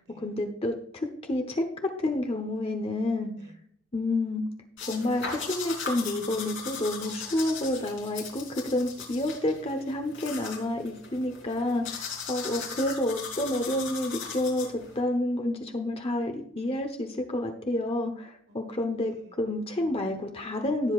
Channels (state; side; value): normal; both; correlation 0.63